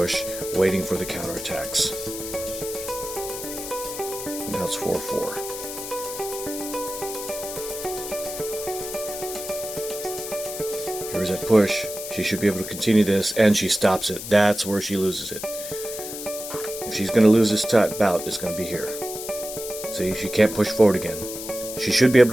waiting for the counterattacks. Now it's 4-4. Here's that push. She should be able to continue this, and she stops it. That's where she loses it. If she's going to lose this bout, it's going to be here. See, she can't push forward again. She should be able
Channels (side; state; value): left; noise; hiss, 9 dB below the sound